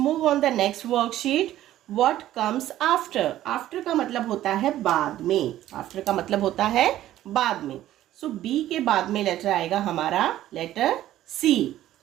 on the next worksheet, what comes after. After का मतलब होता है बाद में, आफ्टर का मतलब होता है बाद में। सो बी के बाद में लेटर आएगा हमारा लेटर सी।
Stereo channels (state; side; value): quieter; left; 13.5 dB